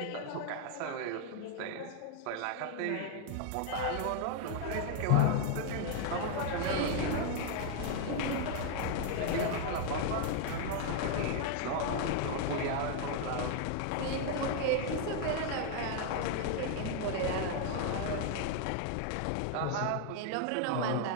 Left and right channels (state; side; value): different; both; correlation 0.00